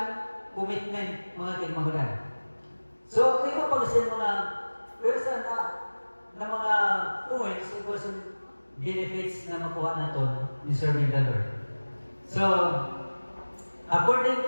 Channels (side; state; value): both; inverted; correlation -1.00